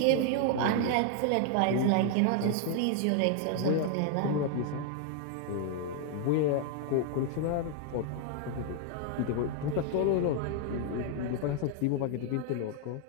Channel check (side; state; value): both; different; correlation 0.00